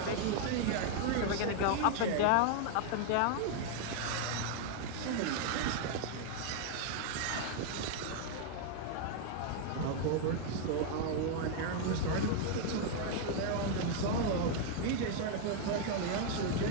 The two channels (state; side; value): different; both; correlation 0.00